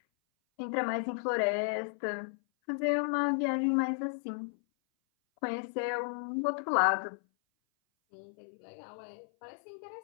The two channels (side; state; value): right; silent; 55 dB below the other